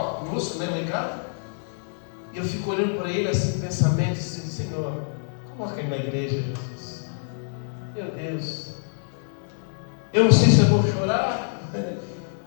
né, lá em casa. E eu fico olhando para ele assim, pensamento, assim: Senhor, coloca ele na igreja, Jesus. Meu Deus, eu não sei se eu vou chorar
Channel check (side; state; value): right; silent; digital silence